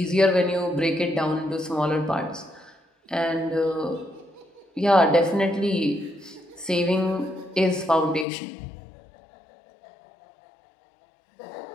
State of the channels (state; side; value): drops out; right; at 8.2 s